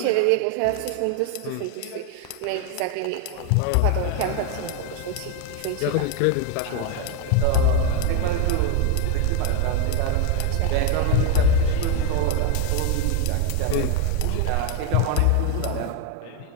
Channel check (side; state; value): both; different; correlation 0.01